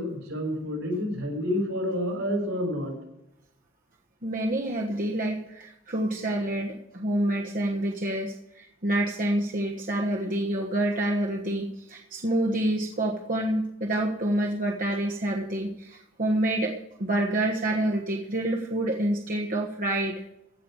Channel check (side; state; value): both; normal; correlation 0.59